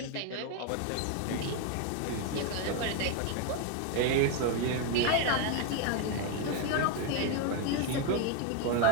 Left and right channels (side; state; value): both; different; correlation 0.01